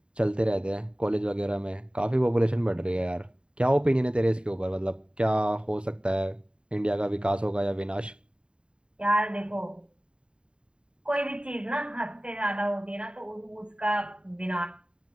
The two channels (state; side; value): late; left; 0.052 ms